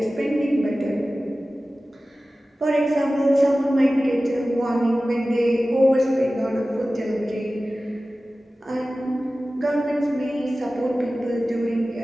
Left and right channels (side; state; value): both; normal; correlation 0.96